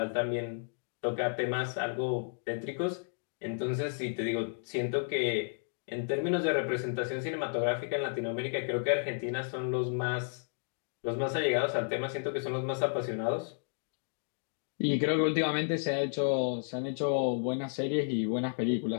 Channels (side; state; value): right; silent; digital silence